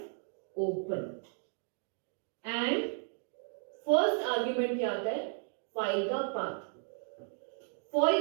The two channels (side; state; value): left; silent; 55 dB below the other